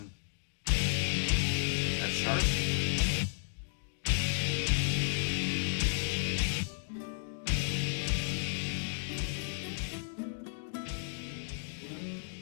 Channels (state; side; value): silent; right; digital silence